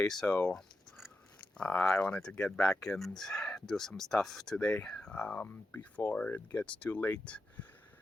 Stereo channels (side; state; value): both; normal; correlation 0.89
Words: so I wanted to get back and do some stuff today before it gets too late.